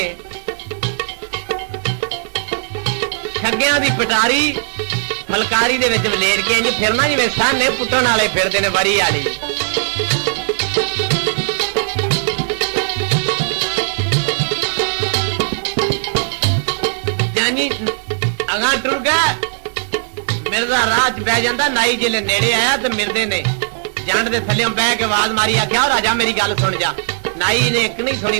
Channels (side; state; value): left; silent; digital silence